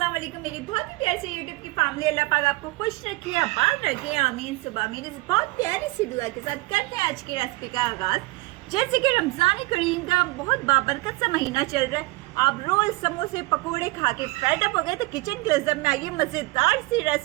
वालेकुम मेरी बहुत ही प्यारी सी यूट्यूब की फैमिली। अल्लाह पाक आपको खुश रखे, आबाद रखे, आमीन सुबह आमीन। इस बहुत प्यारी सी दुआ के साथ करते हैं आज की रेसिपी का आगाज। जैसे कि रमजान करीम का बहुत बाबरकत सा महीना चल रहा है, आप रोज समोसे पकोड़े खा के फेड अप हो गए तो किचन क्लोजअप में आइए, मजेदार सी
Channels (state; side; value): quieter; left; 22.0 dB